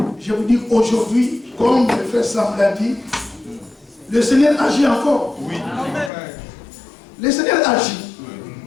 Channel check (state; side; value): drops out; right; at 6.1 s